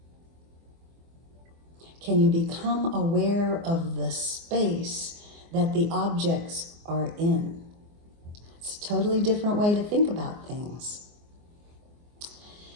Can you become aware of the space that the objects are in? It's a totally different way to think about things.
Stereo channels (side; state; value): left; late; 24 ms